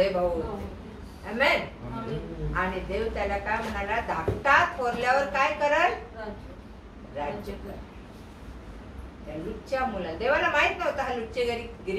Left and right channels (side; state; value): both; identical; correlation 1.00